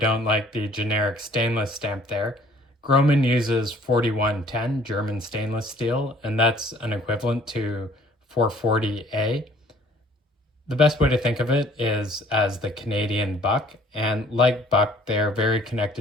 like the generic stainless stamp there. Grohmann uses 4110 German stainless steel, and that's an equivalent to 440A. The best way to think of it is as the Canadian buck, and like buck, they're very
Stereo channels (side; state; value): both; normal; correlation 0.56